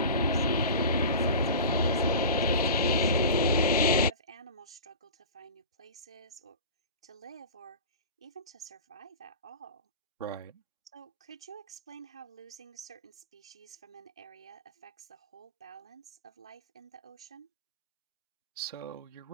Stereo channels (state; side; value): inverted; both; correlation -0.34